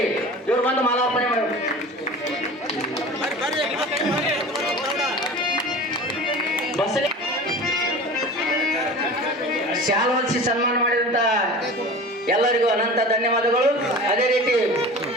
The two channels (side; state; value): both; normal; correlation 0.37